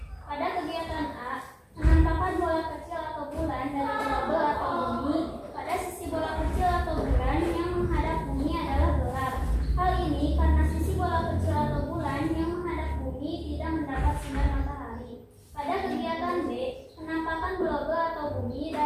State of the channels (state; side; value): identical; both; correlation 1.00